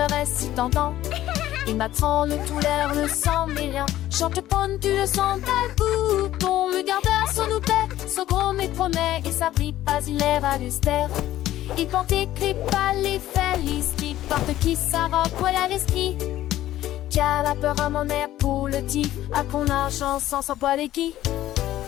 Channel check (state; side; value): quieter; right; 13.9 dB